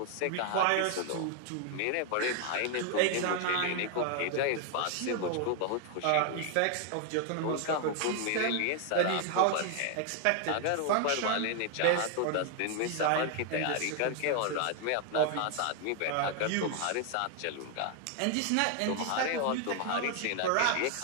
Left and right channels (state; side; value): different; both; correlation 0.00